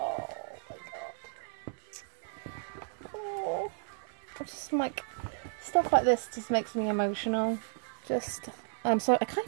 my god. Oh, just like stuff like this just makes me emotional. I'm sorry, I can't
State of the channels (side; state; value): left; silent; digital silence